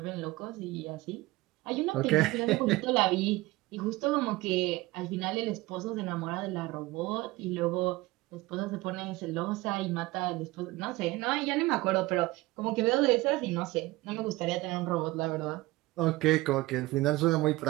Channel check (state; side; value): quieter; left; 19.9 dB